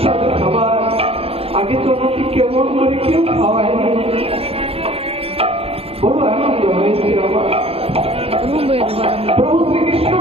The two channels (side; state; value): left; late; 0.28 ms